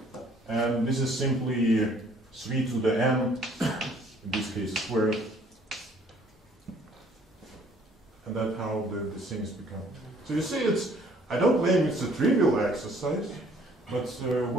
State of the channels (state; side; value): normal; both; correlation 0.59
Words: And this is simply 3 to the n, in this case squared. And that's how the things become. So you see, I don't claim it's a trivial exercise, but